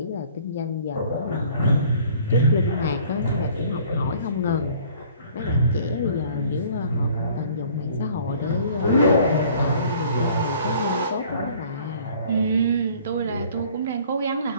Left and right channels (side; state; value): both; inverted; correlation -0.54